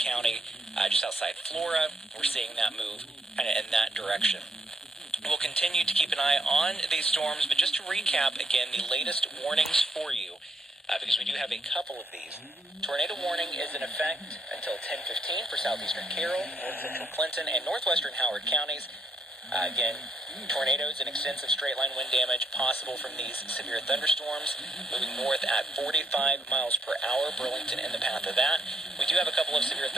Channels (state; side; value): normal; both; correlation 0.74